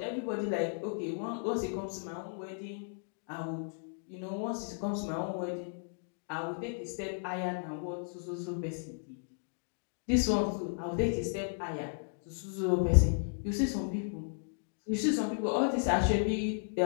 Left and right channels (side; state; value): right; silent; digital silence